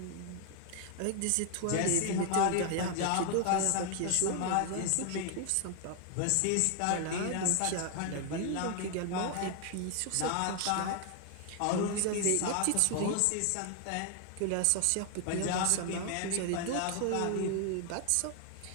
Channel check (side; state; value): both; different; correlation 0.00